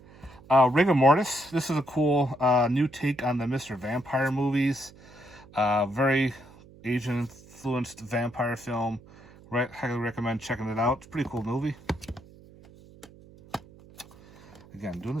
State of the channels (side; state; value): right; noise; hum, 23 dB below the sound